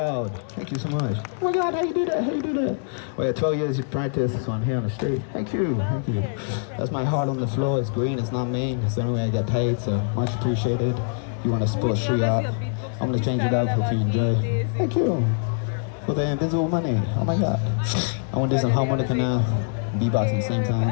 Thank you so much. Oh my God, how you do that? How you do that? Well, yeah, 12 years of practice, so I'm here on the street. Thank you, thank you. That's my heart on the floor. It's green, it's not me. It's the only way I get paid, so much appreciated. You want to support street art? I'm gonna change it up, hope you enjoy. Thank you for the invisible money. Oh my God. I want to do some harmonica now, beatbox at the same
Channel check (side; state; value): right; silent; digital silence